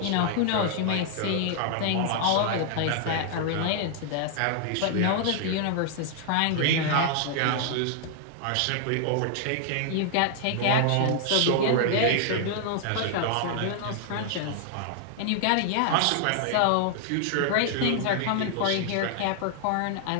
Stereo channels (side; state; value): both; different; correlation 0.00